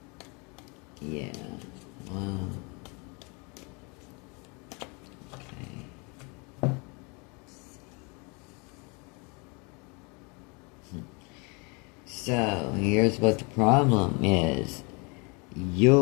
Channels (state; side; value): quieter; right; 31.0 dB